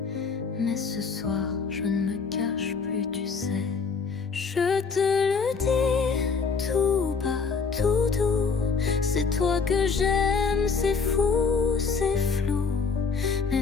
mais ce soir je ne me cache plus, tu sais. Je te le dis tout bas, tout doux, c'est toi que j'aime, c'est fou, c'est flou, mais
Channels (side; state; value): right; quieter; 5.1 dB